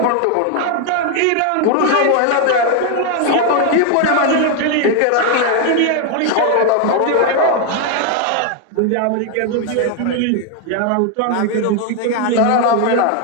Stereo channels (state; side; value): different; both; correlation 0.01